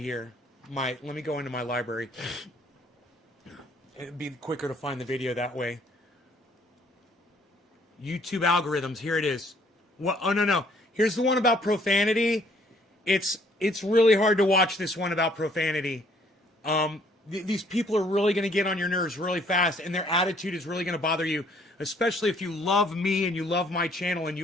Let me go into my library. It'd be quicker to find the video that way. YouTube algorithms. Here it is. What? Oh no. Here's the one about profanity. It's really hard to watch this one about profanity. These people are really going to get on your nerves really fast, and their attitude is really going to bother you, especially if you love me and you love my channel and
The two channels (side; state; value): both; normal; correlation 0.62